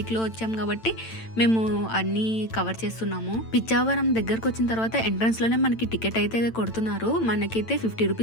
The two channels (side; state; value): right; late; 9.0 ms